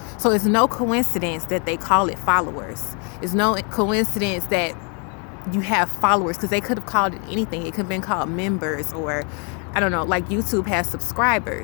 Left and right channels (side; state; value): right; quieter; 37.1 dB